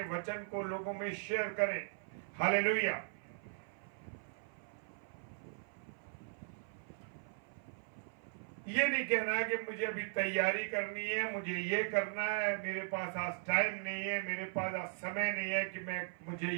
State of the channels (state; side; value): silent; left; 52 dB below the other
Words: वचन को लोगों में शेयर करें। हालेलुया। ये नहीं कहना है कि मुझे अभी तैयारी करनी है, मुझे ये करना है, मेरे पास आज टाइम नहीं है, मेरे पास आज समय नहीं है कि मुझे